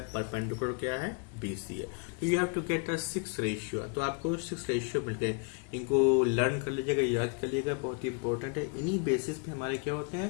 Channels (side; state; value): right; quieter; 36.7 dB